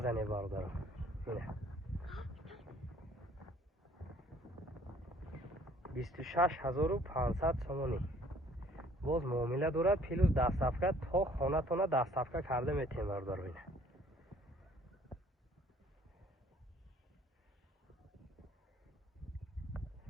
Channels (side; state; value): both; normal; correlation 0.58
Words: زنه برادرو. اینه 26,500 سومانی. باز معامله دارد پیلوز 10 صفحه تا خانه تونه 10 صفحه کرده میتین برادرو. اینه